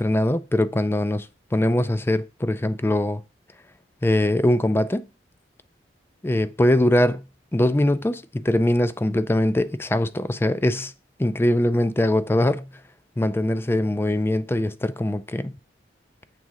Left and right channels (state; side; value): normal; both; correlation 0.91